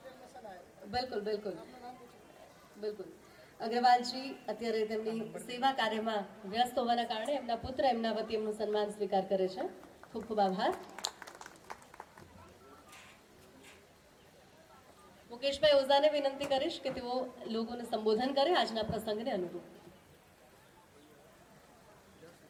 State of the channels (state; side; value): identical; both; correlation 1.00